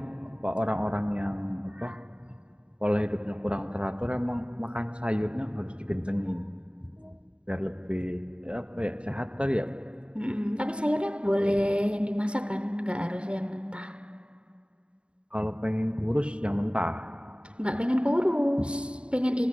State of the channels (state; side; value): late; left; 0.054 ms